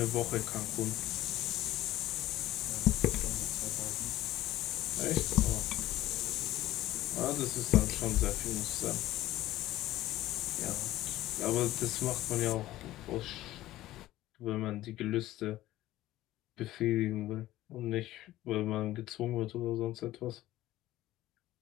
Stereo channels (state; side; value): quieter; right; 15.5 dB